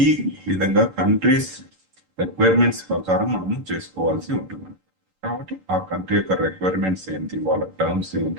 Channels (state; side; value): late; left; 11 ms